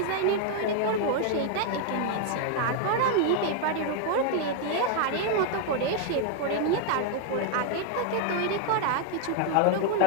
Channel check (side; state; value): both; different; correlation 0.00